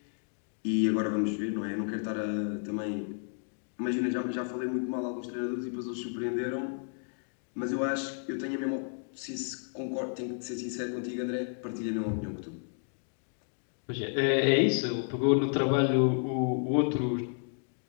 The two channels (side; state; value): right; silent; 57 dB below the other